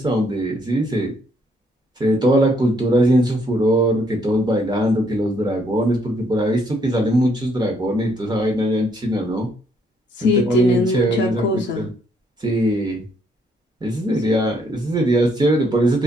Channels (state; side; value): normal; both; correlation 0.70